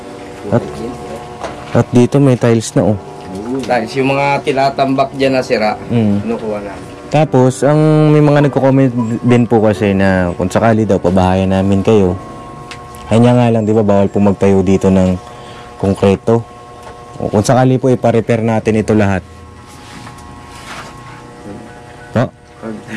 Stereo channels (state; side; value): identical; both; correlation 1.00